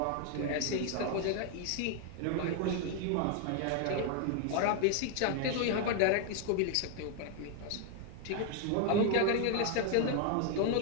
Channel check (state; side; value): different; both; correlation 0.00